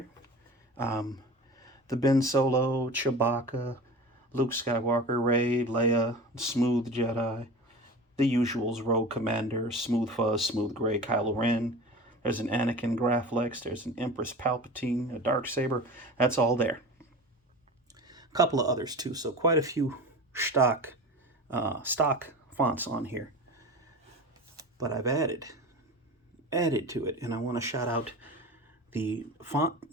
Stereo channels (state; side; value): normal; both; correlation 0.33